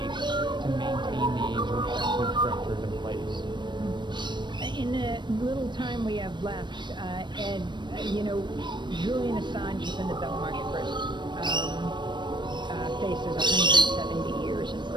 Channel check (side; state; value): left; late; 0.22 ms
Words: to maintain these repressive structures in place. In the little time we have left, Ed, Julian Assange is in the Belmarsh prison. faces 170 years in